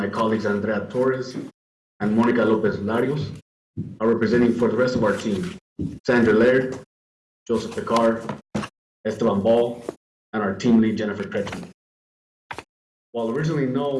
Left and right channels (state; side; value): identical; both; correlation 1.00